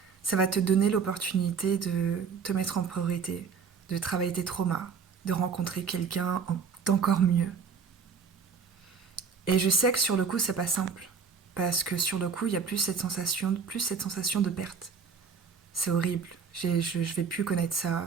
ça va te donner l'opportunité de te mettre en priorité, de travailler tes traumas, de rencontrer quelqu'un d'encore mieux. Et je sais que sur le coup, c'est pas simple. Parce que sur le coup, il y a plus cette sensation de perte. C'est horrible. Je vais plus connaître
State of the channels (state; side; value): quieter; left; 6.0 dB